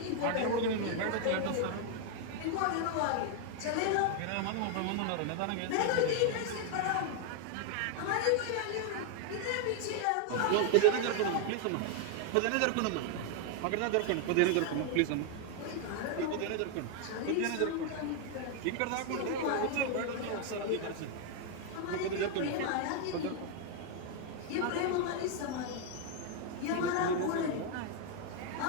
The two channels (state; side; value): different; both; correlation 0.00